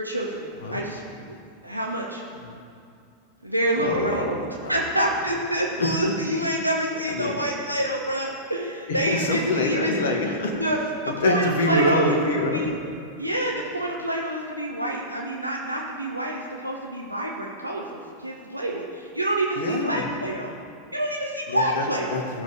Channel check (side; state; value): both; inverted; correlation -0.36